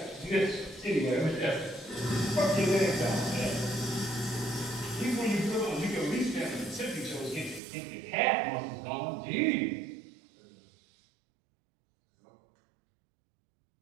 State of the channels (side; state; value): left; drops out; at 7.6 s